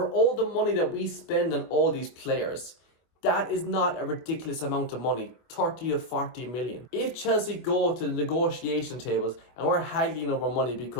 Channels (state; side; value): late; right; 24 ms